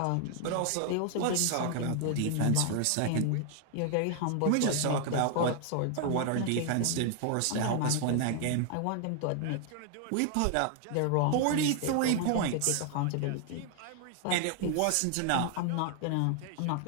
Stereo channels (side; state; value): both; different; correlation 0.00